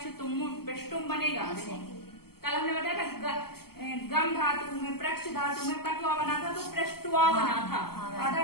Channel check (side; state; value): right; late; 0.95 ms